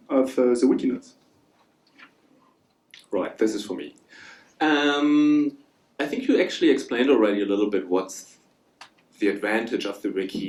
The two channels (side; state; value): both; identical; correlation 1.00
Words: of the wiki nodes? Right, this is for me. I think you actually explained already a little bit what's the advantage of the